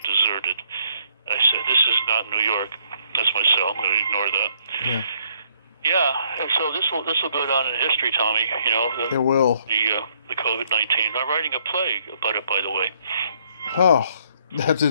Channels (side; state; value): both; inverted; correlation -0.68